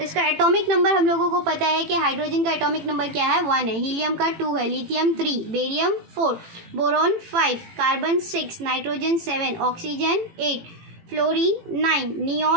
इसका एटॉमिक नंबर हम लोगों को पता है कि हाइड्रोजन का एटॉमिक नंबर क्या है? 1 है, हीलियम का 2 है, lithium 3, barium 4, boron 5, carbon 6, nitrogen 7, oxygen 8, fluorine 9,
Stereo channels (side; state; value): left; late; 18 ms